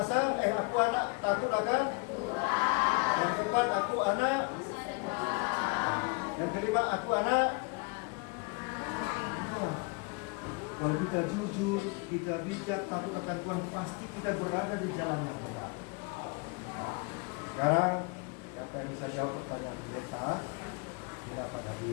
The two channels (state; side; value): quieter; right; 31.3 dB